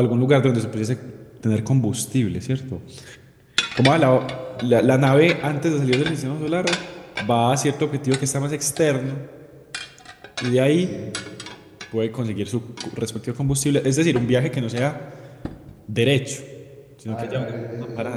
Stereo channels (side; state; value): both; identical; correlation 1.00